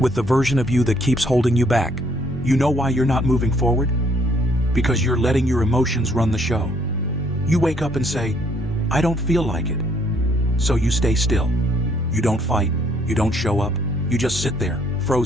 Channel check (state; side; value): normal; both; correlation 0.66